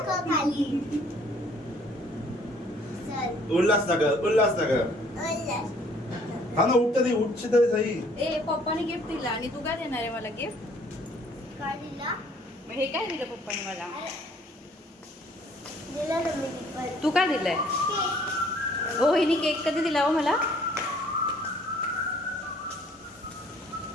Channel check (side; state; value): both; normal; correlation 0.59